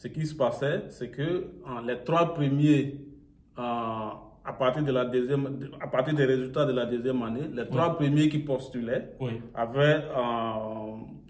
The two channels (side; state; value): both; identical; correlation 1.00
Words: qui se passait, c'est que les 3 premiers, à partir des résultats de la 2e année, les 3 premiers qui postulaient avaient,